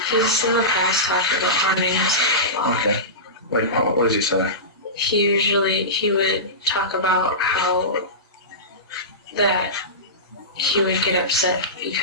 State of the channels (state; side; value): normal; both; correlation -0.19